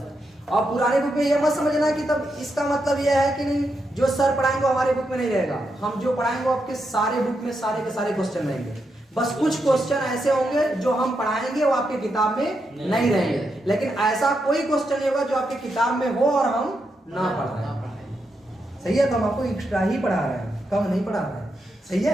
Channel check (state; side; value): normal; both; correlation 0.83